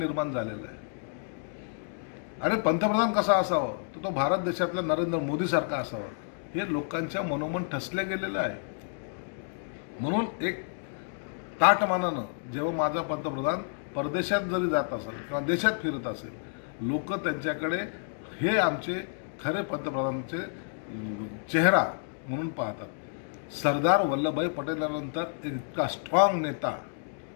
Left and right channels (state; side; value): silent; right; digital silence